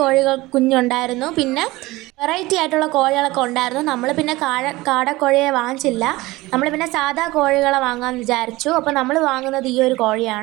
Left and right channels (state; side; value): quieter; left; 20.0 dB